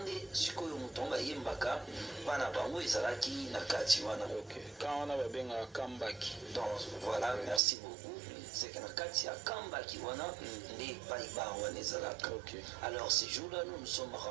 sikoyo mutonga yembaka bana bango ezalaki na kati wana. OK. Quand on a babenga Kambaki. Donc voilà, merci beaucoup. C'est que na kati ya Kambaki wana ne paiba wana ezalaka. OK. Alors ce jour-là nous sommes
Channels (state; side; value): drops out; left; at 7.6 s